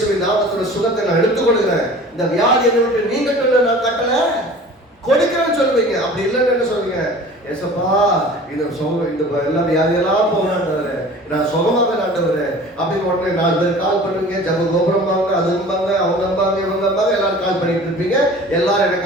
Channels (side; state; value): both; normal; correlation 0.43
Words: நாமத்தில் சுகத்தை நான் எடுத்துக்கொள்கிறேன். இந்த வியாதி என்னை விட்டு நீங்க நான் கட்டல கொடுக்கிறேன்னு சொல்லுவீங்க. அப்படி இல்லைன்னு என்ன சொல்லுவீங்க? ஏசப்பா இந்த எல்லா வியாதியெல்லாம் போகலான்னு நான் சுகமாக நாட்டவரு அப்படின்னு உடனே 4 பேர் கால் பண்ணுவீங்க. ஜப கோபுரம்பாங்க, அதும்பாங்க, அவங்கம்பாங்க, இவங்கம்பாங்க, எல்லாரும் கால் பண்ணிட்டு இருப்பீங்க. எல்லாரும்